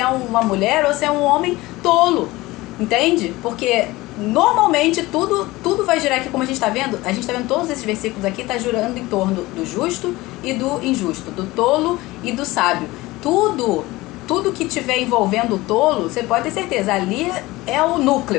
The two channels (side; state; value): right; quieter; 19.7 dB